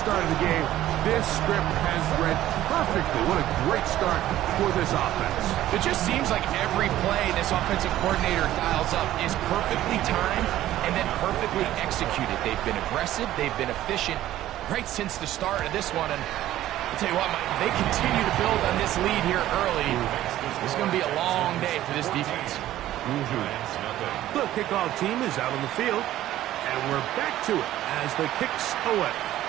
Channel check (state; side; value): quieter; left; 13.8 dB